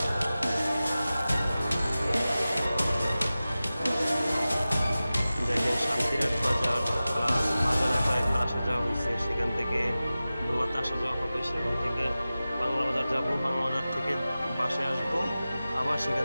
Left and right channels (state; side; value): inverted; both; correlation -0.96